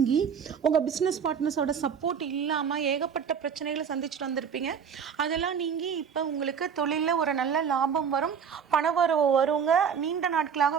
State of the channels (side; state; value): left; quieter; 7.1 dB